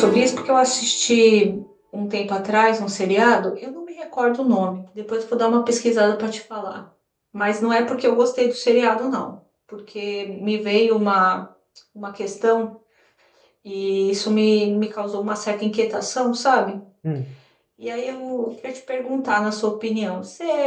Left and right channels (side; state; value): both; identical; correlation 1.00